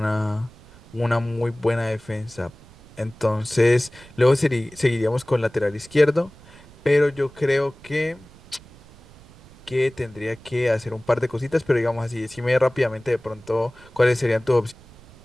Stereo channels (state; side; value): noise; right; rumble, 23 dB below the sound